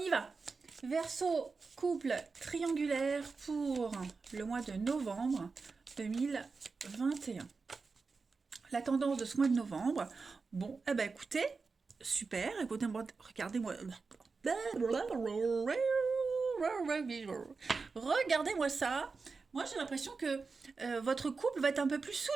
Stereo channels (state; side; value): quieter; left; 4.5 dB